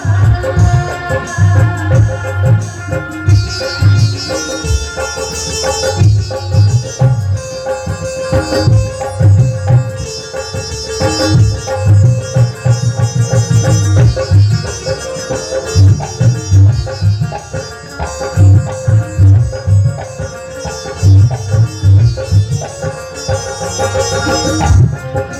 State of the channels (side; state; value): both; identical; correlation 1.00